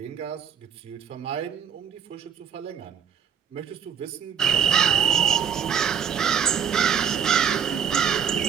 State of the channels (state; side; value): quieter; left; 7.7 dB